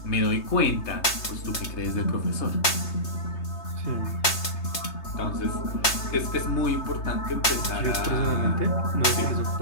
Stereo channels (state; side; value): late; right; 3.3 ms